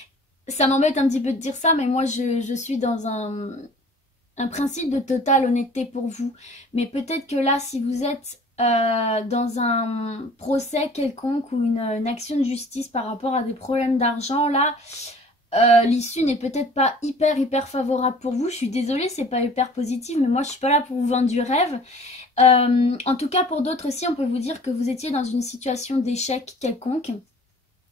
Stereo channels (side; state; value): both; normal; correlation 0.49